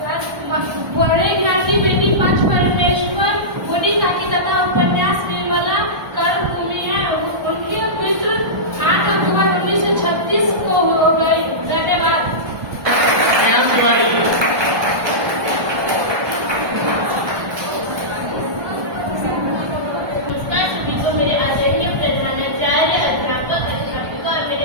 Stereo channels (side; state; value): left; late; 1.2 ms